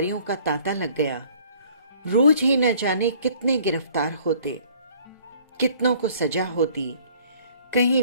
का तांता लग गया। रोज ही न जाने कितने गिरफ्तार होते, कितनों को सजा होती,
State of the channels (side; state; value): both; inverted; correlation -0.56